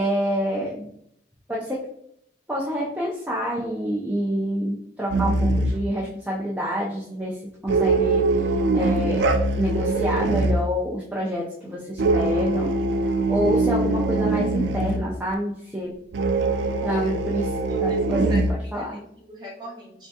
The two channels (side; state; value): both; normal; correlation 0.47